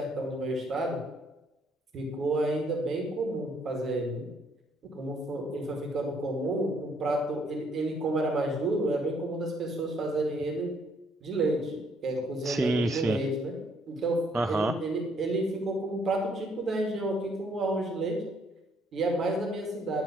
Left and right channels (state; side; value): normal; both; correlation 0.67